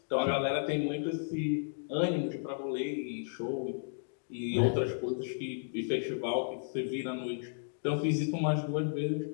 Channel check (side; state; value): right; silent; digital silence